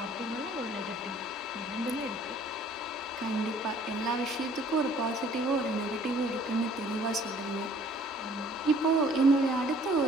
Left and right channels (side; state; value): both; normal; correlation 0.57